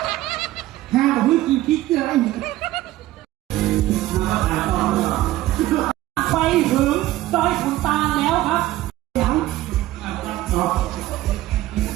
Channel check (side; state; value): left; quieter; 15.8 dB